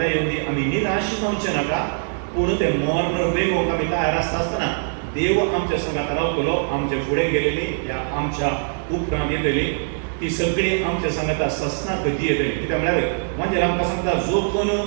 येवन दी, आमी निराश जावचें नाका. पूण तें मरण वेगोवंक आमी तयार आसता आसतना देव आमच्या संगात रावतलो. आमचे फुडें गेलेली या आमच्या उपरांत येतली ती सगळी आमच्या सांगाता ससनाक येतली. कित्याक म्हळ्यार म्हणजे आमकां सांगता, जो कोण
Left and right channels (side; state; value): left; silent; digital silence